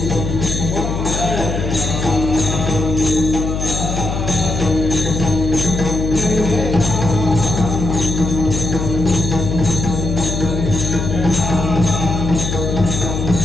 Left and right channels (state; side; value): noise; left; hum, 3 dB below the sound